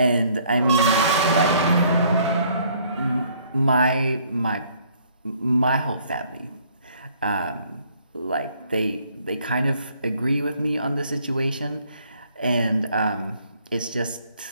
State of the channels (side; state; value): both; inverted; correlation -0.62